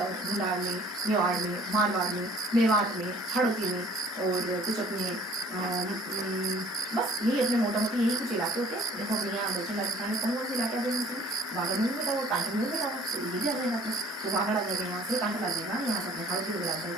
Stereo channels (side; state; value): both; normal; correlation 0.53